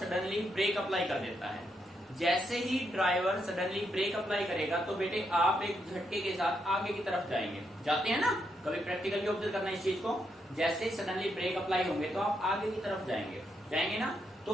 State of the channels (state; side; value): normal; both; correlation 0.80